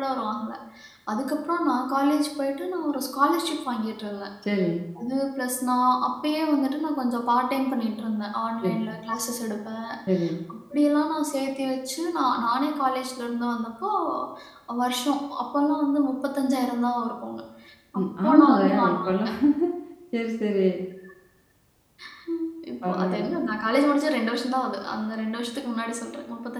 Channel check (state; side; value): identical; both; correlation 1.00